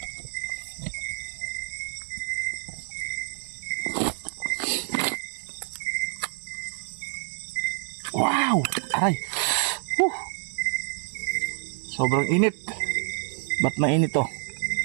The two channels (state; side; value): silent; left; digital silence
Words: Wow, aray. Sobrang init. Ba't mainit to?